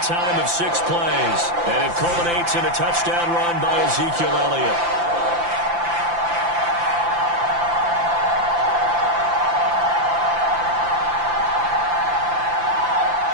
time of 6 plays. And it culminates in a touchdown run by Ezekiel Elliott.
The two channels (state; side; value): late; left; 5.8 ms